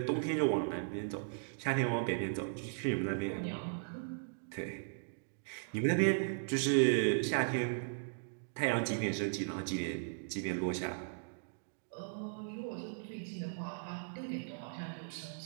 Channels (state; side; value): silent; left; digital silence